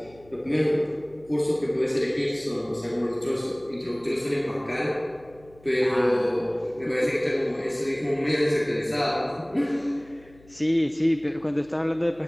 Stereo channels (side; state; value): left; noise; hum, 26 dB below the sound